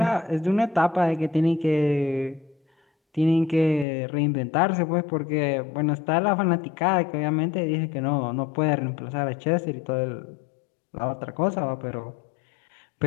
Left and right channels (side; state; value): right; drops out; at 3.9 s